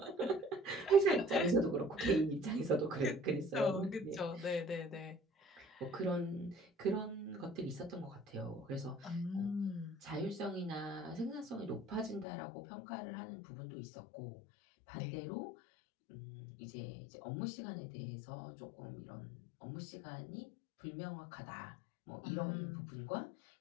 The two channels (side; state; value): right; drops out; at 12.2 s